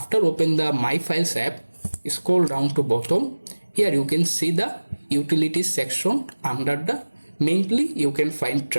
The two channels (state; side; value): inverted; both; correlation -1.00